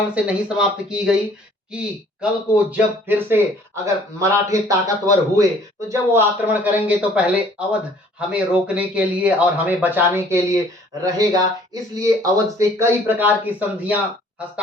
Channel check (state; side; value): normal; both; correlation 0.56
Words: से नहीं समाप्त की गई कि कल को जब फिर से अगर मराठे ताकतवर हुए, तो जब वो आक्रमण करेंगे तो पहले अवध हमें रोकने के लिए और हमें बचाने के लिए रहेगा। इसलिए अवध से कई प्रकार की संधियां